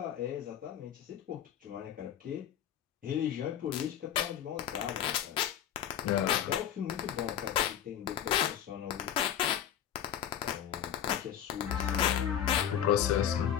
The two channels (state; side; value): quieter; right; 10.0 dB